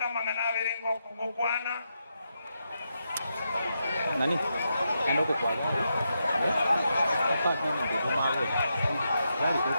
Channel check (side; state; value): both; inverted; correlation -0.84